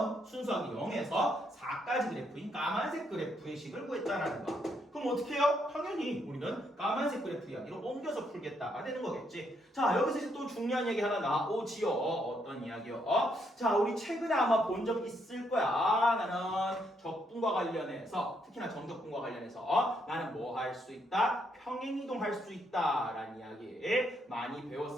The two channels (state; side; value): normal; both; correlation 0.75